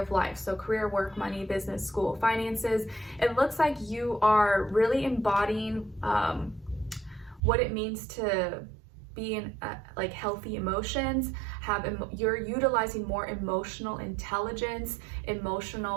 of life? So career, work, money, business, school, finances. It looks like you are really embodying what it means to be in like healthy emotions, you're utilizing more emotional intelligence,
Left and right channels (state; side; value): drops out; left; at 7.4 s